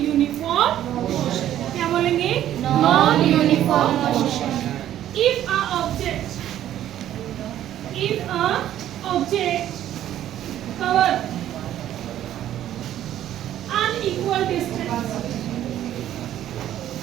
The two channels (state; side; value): quieter; left; 11.9 dB